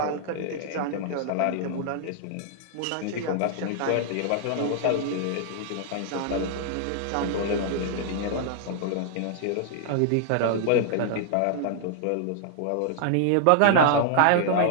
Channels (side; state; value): both; different; correlation -0.01